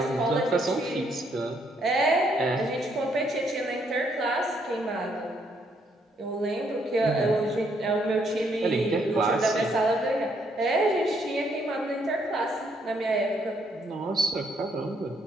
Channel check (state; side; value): normal; both; correlation 0.72